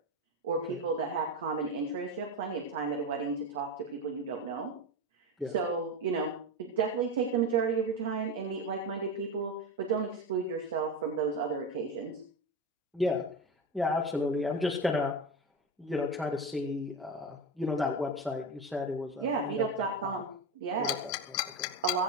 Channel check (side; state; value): both; normal; correlation 0.20